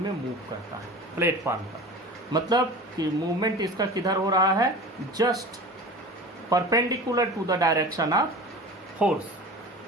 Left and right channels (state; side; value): normal; both; correlation 0.36